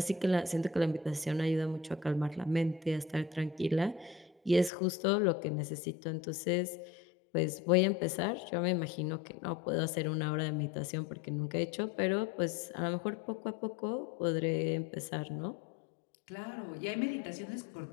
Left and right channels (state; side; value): drops out; right; at 4.7 s